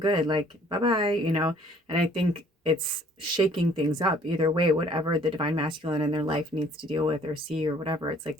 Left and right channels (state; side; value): normal; both; correlation 0.58